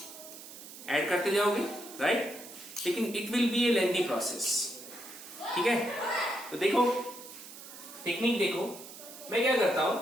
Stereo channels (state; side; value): noise; right; hiss, 15 dB below the sound